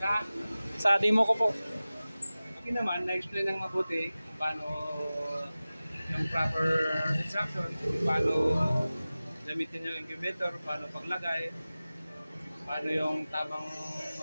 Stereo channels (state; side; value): inverted; both; correlation -0.97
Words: Sa Sa demo ko po. akin naman, na-explain ng mabuti kung paano yung proper instruction, kung paano gamitin yung incubator, paano paglagay, paano yung tamang